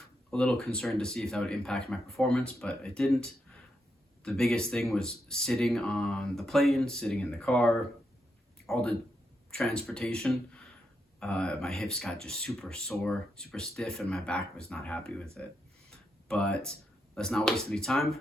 a little concerned to see if that would impact my performance, but it didn't. The biggest thing was sitting on the plane, sitting in the car, all the transportation. My hips got just super sore, super stiff, and my back was not happy with it. But let's not waste any time.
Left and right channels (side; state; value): both; normal; correlation 0.82